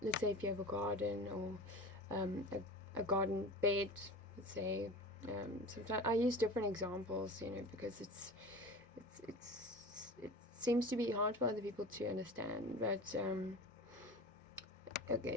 let's say if you have a garden, or a garden bed, let's say. Sometimes I use different examples, because it seems to be hard for other people to understand. But okay,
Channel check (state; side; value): normal; both; correlation 0.34